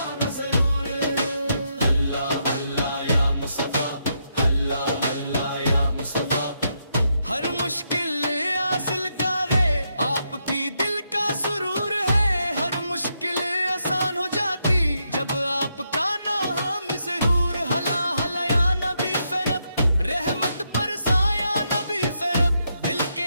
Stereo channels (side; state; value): both; inverted; correlation -0.80